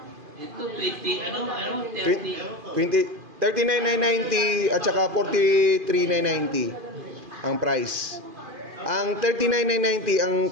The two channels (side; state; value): left; late; 2.5 ms